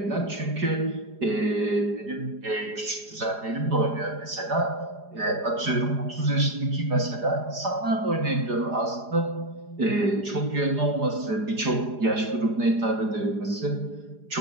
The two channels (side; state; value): left; late; 4.9 ms